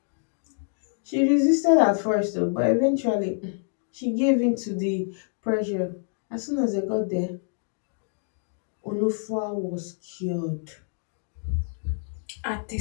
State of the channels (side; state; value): right; silent; 59 dB below the other